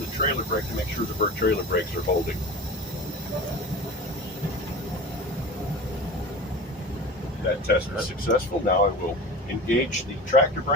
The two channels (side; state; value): both; normal; correlation 0.34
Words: trailer brake to make sure the trailer brakes are holding. That test was successful. Now I will engage the tractor